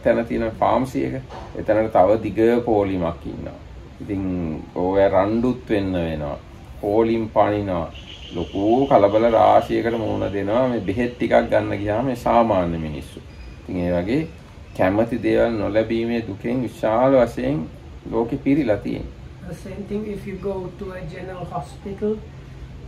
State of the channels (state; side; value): identical; both; correlation 1.00